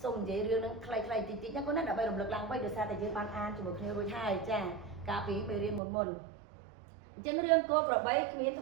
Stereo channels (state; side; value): drops out; left; at 5.8 s